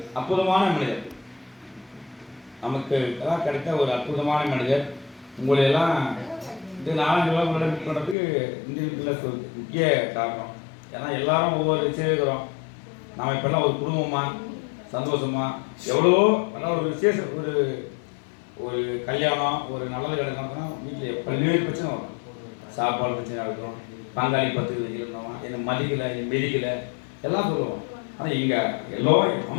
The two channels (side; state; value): right; drops out; at 8.2 s